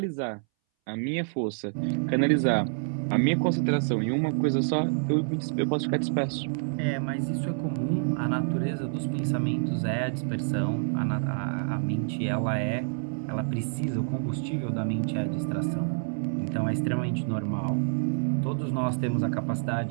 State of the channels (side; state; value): left; silent; 60 dB below the other